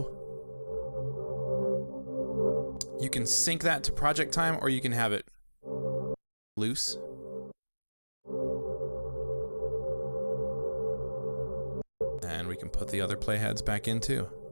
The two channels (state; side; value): inverted; both; correlation -1.00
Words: You can sync that to project time, or you can have it loose. And we can put the other playheads back in too.